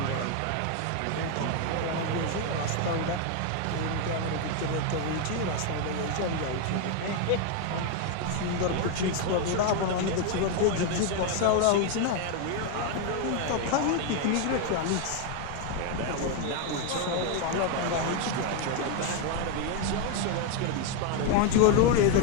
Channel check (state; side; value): different; both; correlation 0.01